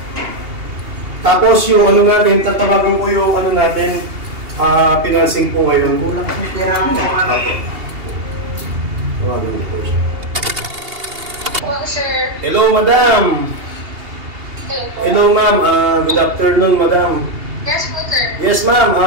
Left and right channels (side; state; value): left; late; 2.8 ms